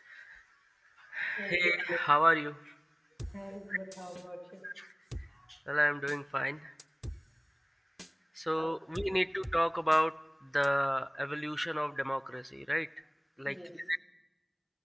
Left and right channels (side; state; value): both; identical; correlation 1.00